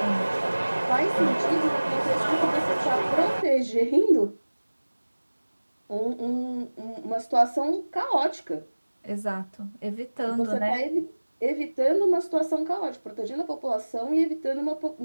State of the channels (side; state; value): both; inverted; correlation -1.00